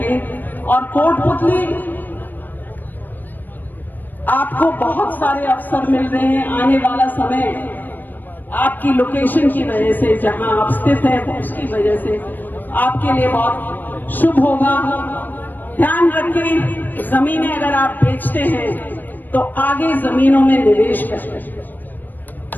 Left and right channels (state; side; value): late; right; 0.090 ms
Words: और कोटपुतली, आपको बहुत सारे अवसर मिल रहे हैं। आने वाला समय आपकी लोकेशन की वजह से, जहां आप स्थित हैं उसकी वजह से आपके लिए बहुत शुभ होगा। ध्यान रखें, जमीनें अगर आप बेचते हैं तो आगे जमीनों में निवेश करें।